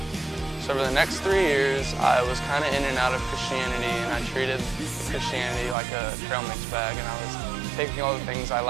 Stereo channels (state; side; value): drops out; left; at 5.8 s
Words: So for the next 3 years, I was kind of in and out of Christianity, and I treated Christianity like a trail mix bag, and I was taking all the things I